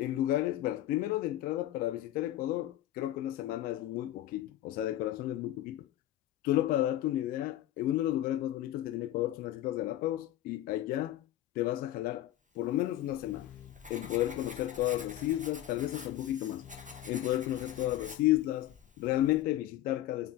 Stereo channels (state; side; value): quieter; right; 13.7 dB